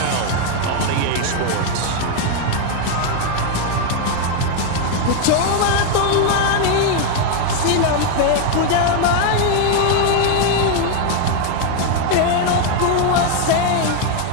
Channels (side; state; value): both; different; correlation 0.01